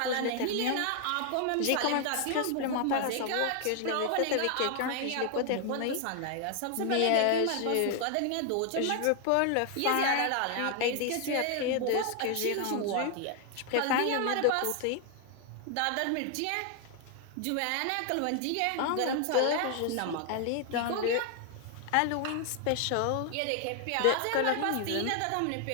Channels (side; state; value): both; different; correlation 0.00